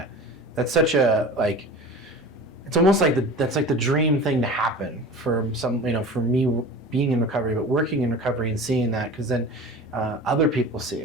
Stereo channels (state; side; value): normal; both; correlation 0.36